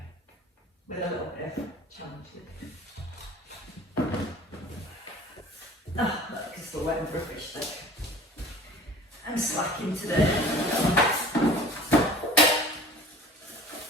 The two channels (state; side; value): normal; both; correlation 0.45